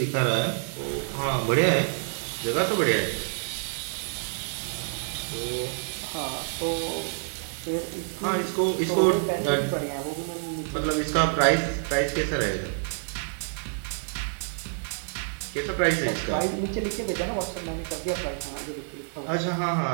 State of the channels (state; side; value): silent; left; 60 dB below the other